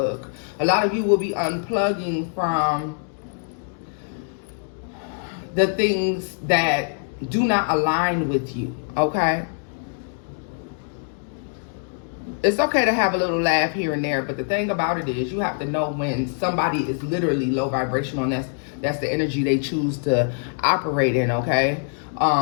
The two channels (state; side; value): silent; right; 63 dB below the other